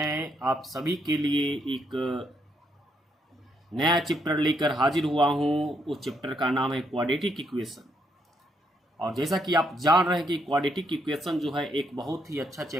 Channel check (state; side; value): normal; both; correlation 0.75